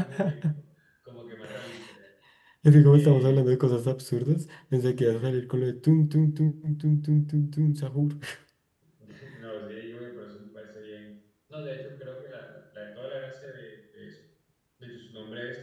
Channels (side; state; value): both; identical; correlation 1.00